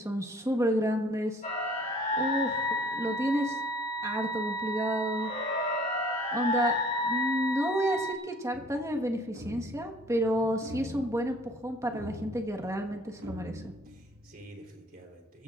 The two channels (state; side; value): normal; both; correlation 0.53